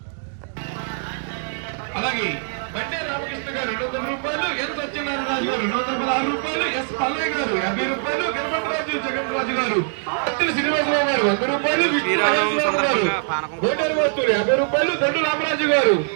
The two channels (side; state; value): left; silent; 64 dB below the other